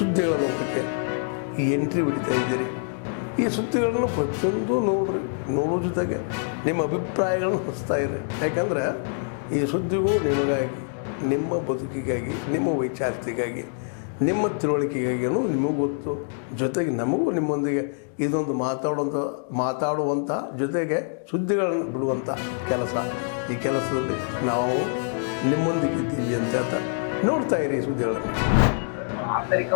ಲೋಕಕ್ಕೆ ಎಂಟ್ರಿ ಹೊಡಿತಾ ಇದ್ದೀರಿ. ಈ ಸುದ್ದಿಗಳನ್ನು ಪ್ರತಿಯೊಂದು ನೋಡೋ ಜೊತೆಗೆ ನಿಮ್ಮ ಅಭಿಪ್ರಾಯಗಳನ್ನು ಹಂಚ್ತಾ ಇರಿ. ಯಾಕಂದರೆ ಈ ಸುದ್ದಿಗೂ ನಿಮಗಾಗಿ, ನಿಮ್ಮ ಬದುಕಿಗಾಗಿ, ನಿಮ್ಮ ವೈಚಾರಿಕೆಗಾಗಿ, ನಿಮ್ಮ ತಿಳುವಳಿಕೆಗಾಗಿಯೂ ನಿಮಗೂ ಗೊತ್ತು. ಜೊತೆಗೆ ನಮಗೂ ನಿಮ್ಮೊಂದಿಗೆ ಇದೊಂದು ಮಾತಾಡುವಂಥ ಜೊತೆಗೆ ಸುದ್ದಿಗಳನ್ನು ಬಿಡುವಂಥ ಕೆಲಸ. ಈ ಕೆಲಸದಲ್ಲಿ ನಾವು ನಿಮ್ಮೊಂದಿಗಿದ್ದೀವಿ ಅಂತ ಹೇಳ್ತಾ ನೋಡ್ತಾ ಇರಿ ಸುದ್ದಿಗಳನ್ನು.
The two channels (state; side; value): silent; right; 62 dB below the other